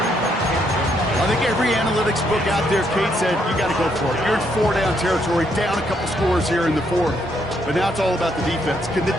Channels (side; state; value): both; normal; correlation 0.74